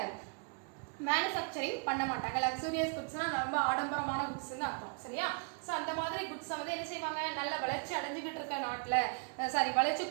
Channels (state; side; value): quieter; left; 38.0 dB